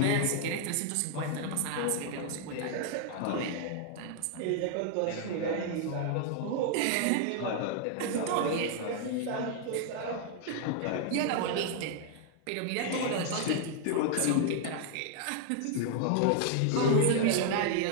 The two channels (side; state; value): both; different; correlation 0.00